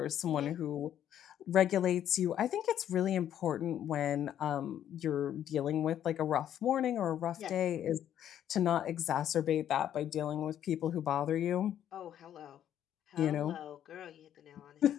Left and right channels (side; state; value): right; quieter; 10.5 dB